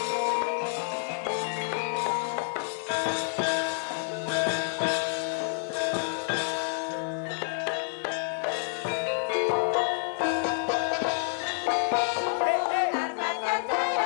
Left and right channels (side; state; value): right; silent; 59 dB below the other